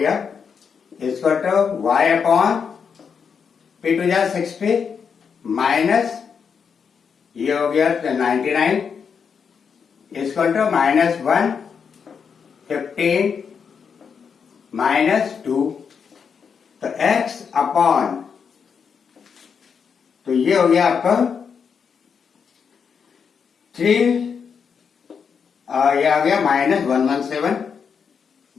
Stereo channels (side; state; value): right; quieter; 6.5 dB